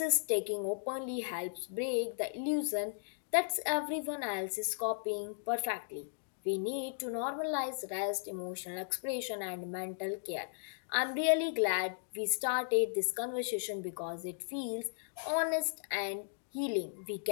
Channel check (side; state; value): right; silent; digital silence